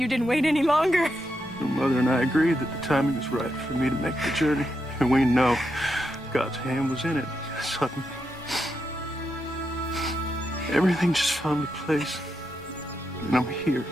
didn't wait any longer. Your mother and I agreed that the timing was right for me to make the journey, and we know God's hand was in it. Suddenly, everything just fell into place, and I'm here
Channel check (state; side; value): normal; both; correlation 0.84